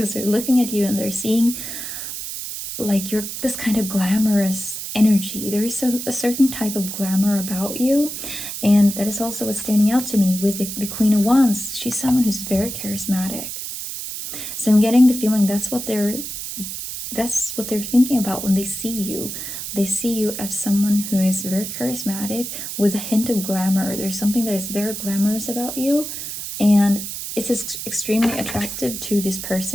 they're looking at you and they're seeing like you're this kind of glamorous energy. There is a certain type of glamour about you, and that is also what's standing out to me with the Queen of Wands. She's someone who's very charismatic. So I'm getting the feeling that's what they're that's what they're thinking about when they see you. They see you as someone who is very charismatic with a hint of glamour. There's something that is very glamorous about you, and it's extremely attractive to this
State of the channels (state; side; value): noise; right; hiss, 7 dB below the sound